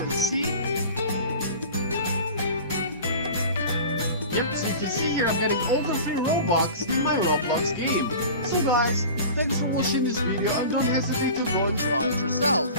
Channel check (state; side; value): inverted; both; correlation -0.37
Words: see. Yep, so you can see here I'm getting all the free Robux in my Roblox game. So guys, thanks for watching this video and don't hesitate to go and try it yourself.